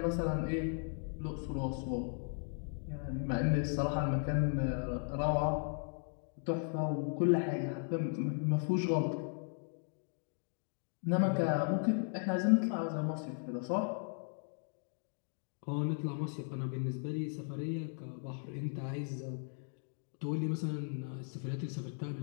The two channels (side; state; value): right; silent; 53 dB below the other